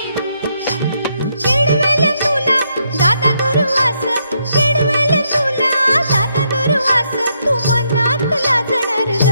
चिडवेल तुला दादा दुर्वास चिडवेल तुला दादा दुर्वास तू मनात लाजणार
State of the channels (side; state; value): both; inverted; correlation -0.77